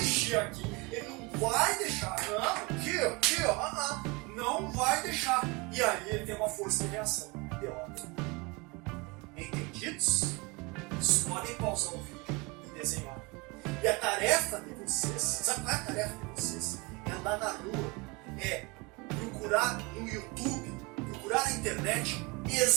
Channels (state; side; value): quieter; left; 26.9 dB